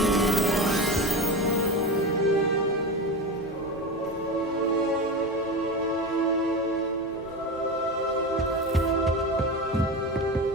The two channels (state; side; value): normal; both; correlation 0.22